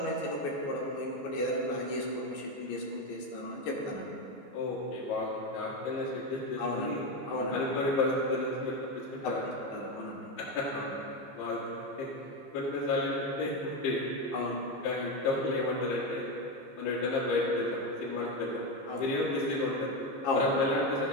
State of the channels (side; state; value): right; late; 15 ms